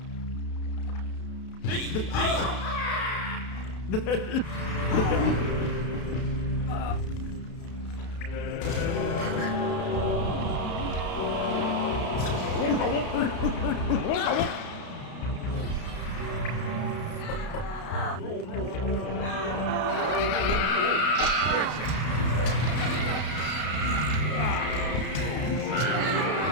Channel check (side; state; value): right; late; 32 ms